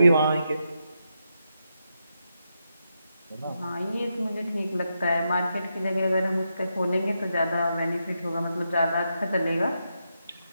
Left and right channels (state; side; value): inverted; both; correlation -0.84